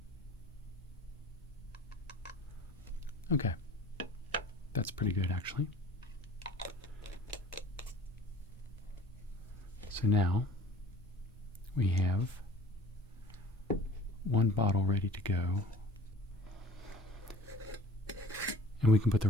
Okay, that's pretty good actually. So now we have one bottle ready to go, and we can put the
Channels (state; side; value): normal; both; correlation 0.47